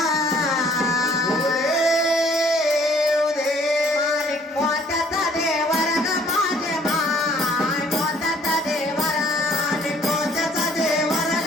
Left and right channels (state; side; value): normal; both; correlation 0.58